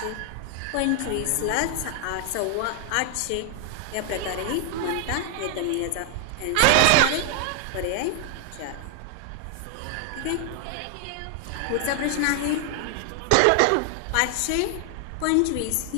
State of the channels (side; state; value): both; different; correlation 0.00